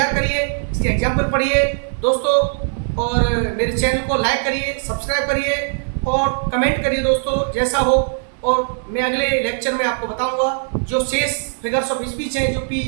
करिए, इसके एग्जाम्पल पढ़िए दोस्तों, और मेरे चैनल को लाइक करिए, सब्सक्राइब करिए और कमेंट करिए दोस्तों जैसा हो। और मैं अगले लेक्चर में आपको बताऊंगा जो शेष फिगर्स ऑफ स्पीच हैं जो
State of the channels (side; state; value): left; silent; digital silence